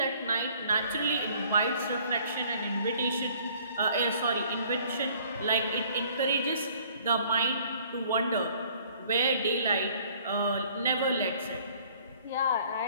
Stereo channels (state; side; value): inverted; both; correlation -0.57